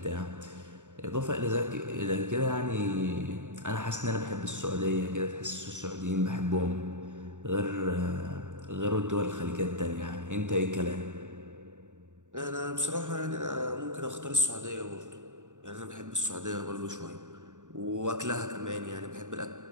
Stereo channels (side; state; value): left; late; 0.86 ms